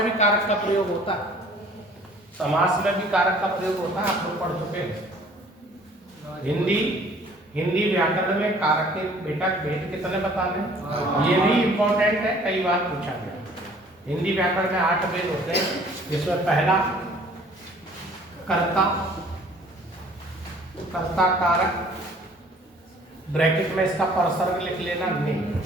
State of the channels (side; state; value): both; normal; correlation 0.54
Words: भी कारक का प्रयोग होता है, समास में भी कारक का प्रयोग होता है, आप लोग पढ़ चुके हैं। हिंदी व्याकरण में कारक के बेटा भेद कितने बताने, ये भी इंपॉर्टेंट है, कई बार पूछा गया। हिंदी व्याकरण में 8 भेद होते हैं, जिसमें पहला कर्ता, कर्ता कारक, ब्रैकेट में इसका परसर्ग लिख लेना ने,